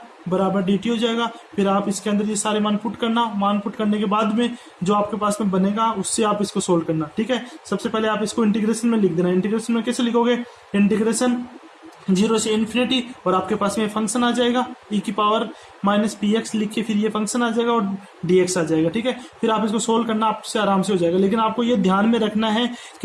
बराबर dt हो जाएगा, फिर आप इसके अंदर ये सारे मान पुट करना, मान पुट करने के बाद में जो आपके पास में बनेगा उससे आप इसको सोल्व करना। ठीक है, सबसे पहले आप इसको इंटीग्रेशन में लिख देना। इंटीग्रेशन में कैसे लिखोगे, इंटीग्रेशन 0 से इन्फिनिटी, और आपके पास में फंक्शन आ जाएगा e की पावर माइनस पी एक्स लिख के फिर ये फंक्शन आ जाएगा और dx आ जाएगा। ठीक है, फिर आप इसको सोल्व करना आपसे आराम से हो जाएगा। लेकिन आपको ये ध्यान में रखना है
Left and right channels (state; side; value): identical; both; correlation 1.00